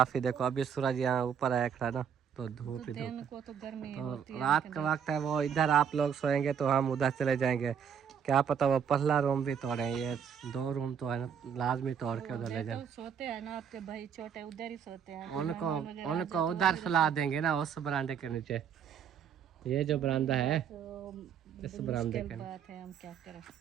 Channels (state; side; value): quieter; left; 7.8 dB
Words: देखो अभी सूरज यहाँ ऊपर आया खड़ा ना, तो धूप ही धूप। को तो गर्मी तो होती है, रात का वक्त है, वो इधर आप लोग सोएंगे तो हम उधर चले जाएंगे। क्या पता वो पहला रूम भी तोड़े, ये 2 रूम तो है ना, लाजमी तोड़ के उधर ले जाए। तो सोते हैं ना आपके भाई छोटे, उधर ही सोते हैं। उनको उधर सुला देंगे ना, उस बरामदे के नीचे। ये जो बरामदा है तो इस बरामदे के बात है, हम क्या करें,